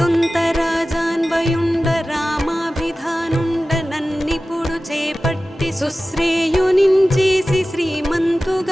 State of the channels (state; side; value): normal; both; correlation 0.96